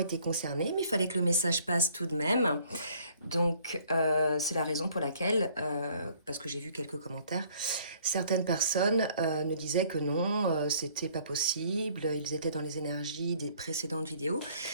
concernées, mais il fallait que le message passe tout de même. Donc, c'est la raison pour laquelle, parce que j'ai vu quelques commentaires, certaines personnes me disaient que non, c'était pas possible, ils étaient dans les énergies des précédentes vidéos.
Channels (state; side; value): inverted; both; correlation -0.59